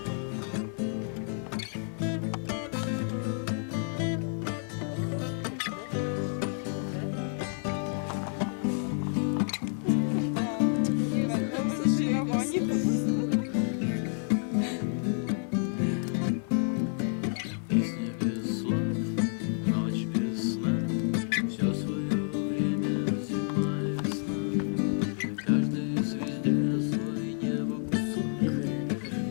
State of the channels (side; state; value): right; silent; 57 dB below the other